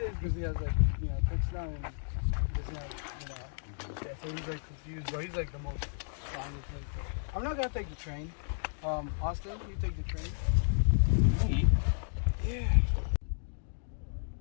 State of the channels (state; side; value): silent; right; digital silence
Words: Because he has like, touchdown and doesn't have, yeah, so he's like confused, but he's like the most strongest. I'm not gonna take the train. Austin, you take the train? Me? Yeah.